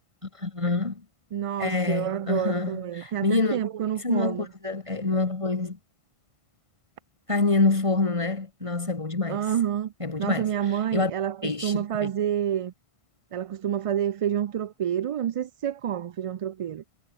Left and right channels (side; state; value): left; late; 1.5 ms